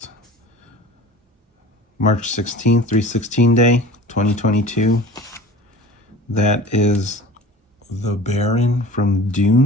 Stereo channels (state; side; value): normal; both; correlation 0.41